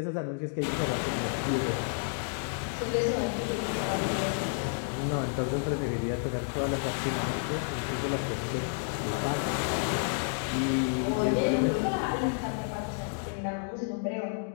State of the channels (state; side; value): silent; right; digital silence